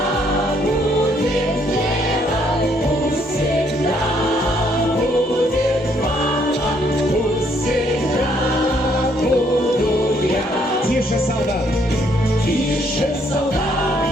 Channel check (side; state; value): both; normal; correlation 0.69